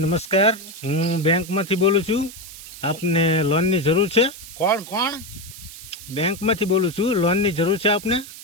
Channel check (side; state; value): right; noise; hiss, 15 dB below the sound